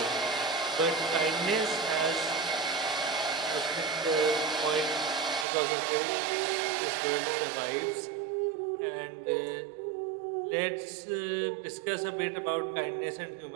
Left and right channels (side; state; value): left; drops out; at 5.5 s